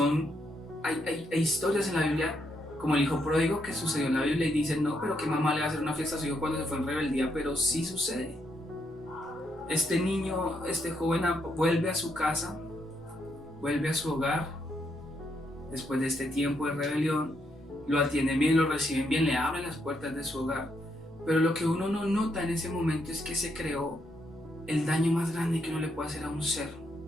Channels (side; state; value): both; normal; correlation 0.77